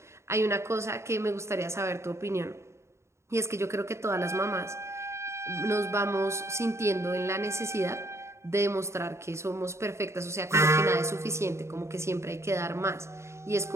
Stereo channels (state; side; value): late; left; 0.13 ms